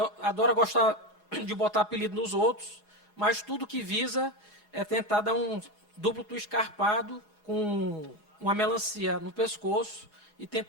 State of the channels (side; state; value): right; late; 4.8 ms